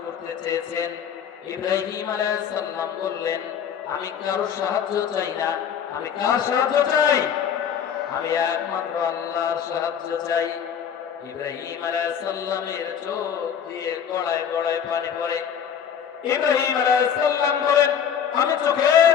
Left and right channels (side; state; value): right; quieter; 8.2 dB